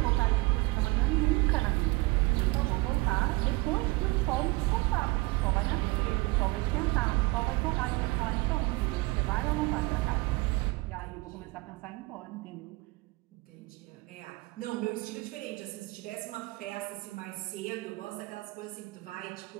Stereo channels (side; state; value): left; quieter; 23.5 dB